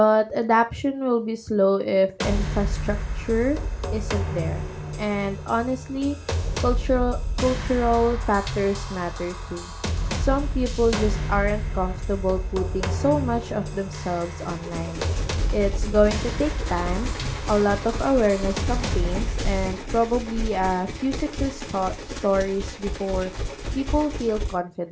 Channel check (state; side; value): identical; both; correlation 1.00